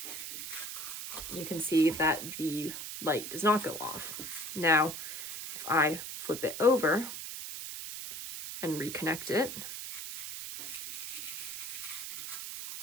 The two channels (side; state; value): right; noise; hiss, 7 dB below the sound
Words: you can see that the light does not go off. Now, if I flip it over and reconnect it,